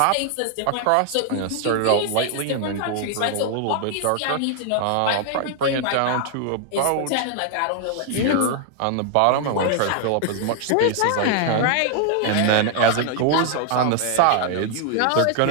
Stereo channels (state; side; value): different; both; correlation 0.00